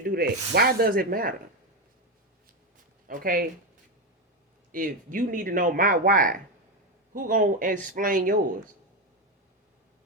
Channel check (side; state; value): both; normal; correlation 0.11